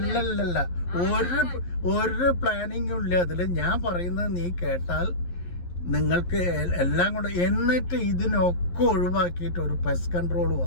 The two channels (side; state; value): right; late; 11 ms